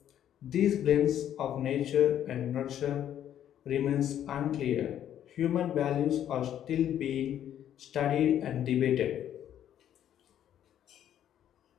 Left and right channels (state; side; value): quieter; right; 10.6 dB